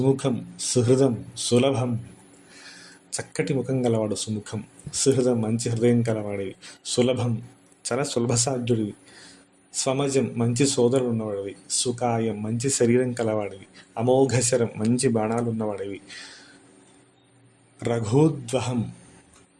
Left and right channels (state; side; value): identical; both; correlation 1.00